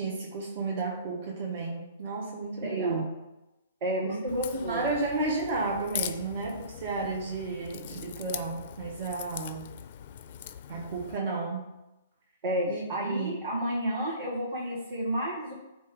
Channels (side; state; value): both; inverted; correlation -0.44